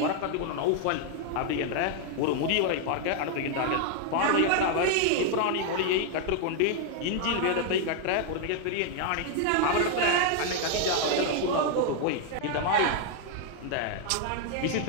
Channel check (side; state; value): both; different; correlation 0.00